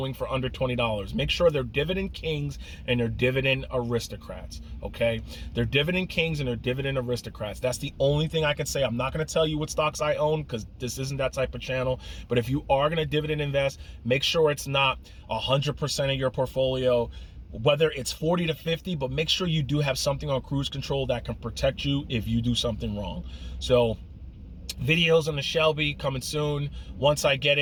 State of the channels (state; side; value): identical; both; correlation 1.00